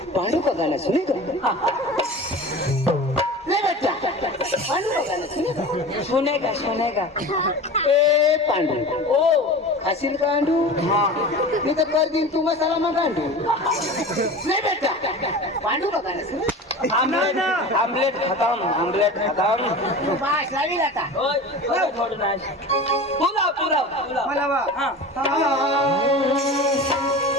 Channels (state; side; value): normal; both; correlation 0.34